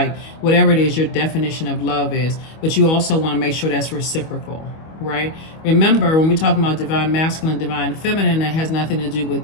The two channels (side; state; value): right; late; 25 ms